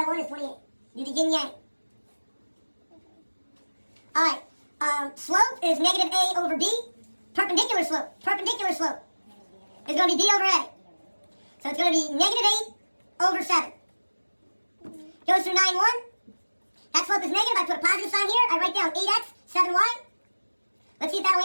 1 is 28. Do the yin-yang. Alright. Slope is negative a over b. Perpendicular slope is going to be b over a. So it's going to be negative 8 over 7. Goes through 9, 1. That slope is negative. I put a positive sign here. I write down 8x, 7y. Let's see if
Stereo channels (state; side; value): inverted; both; correlation -1.00